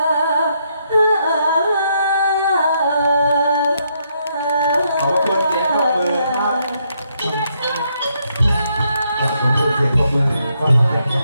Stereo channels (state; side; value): inverted; both; correlation -0.75